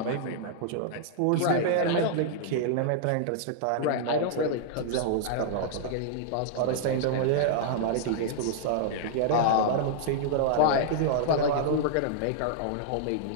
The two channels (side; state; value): both; different; correlation -0.01